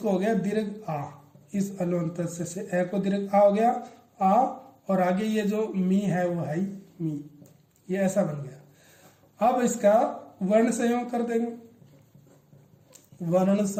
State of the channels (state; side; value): identical; both; correlation 1.00